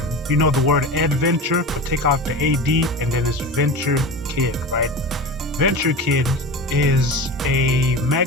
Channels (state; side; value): normal; both; correlation 0.29